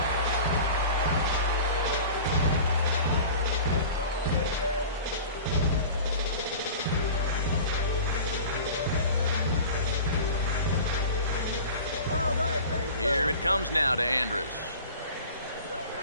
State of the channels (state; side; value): inverted; both; correlation -0.38